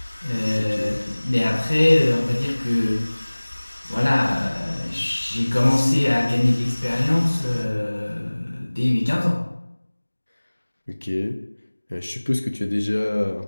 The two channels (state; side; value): inverted; both; correlation -1.00